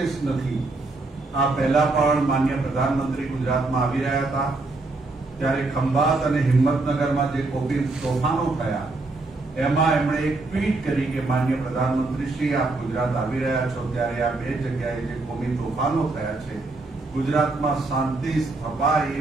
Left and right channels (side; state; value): left; quieter; 3.3 dB